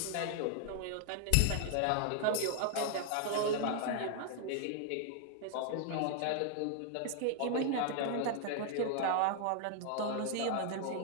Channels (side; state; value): both; different; correlation 0.00